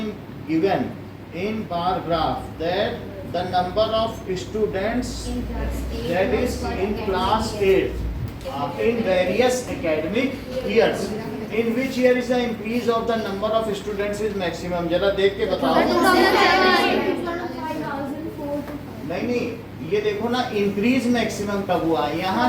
given in bar graph that the number of students that is in class 8 in various academic years, in which year is the increase of the number of students is maximum? जरा देख के बताओ। नहीं, ये देखो ना, increase maximum कब हुआ? यहाँ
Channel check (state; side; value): identical; both; correlation 1.00